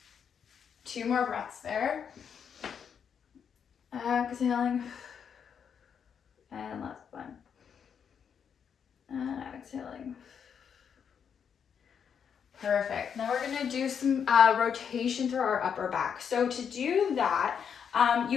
2 more breaths there. Exhaling. And last one. And exhaling. Perfect. Now we're going to do some rotation through our upper back. So to do that,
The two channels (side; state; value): right; quieter; 7.4 dB